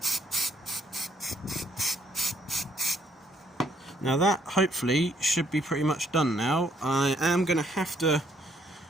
Now that hopefully should be pretty much done now. I am going to have to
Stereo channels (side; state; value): both; normal; correlation 0.69